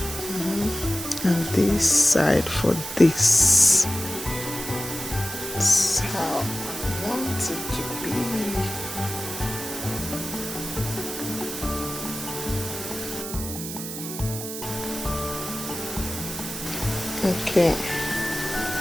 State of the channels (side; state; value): right; noise; hiss, 8 dB below the sound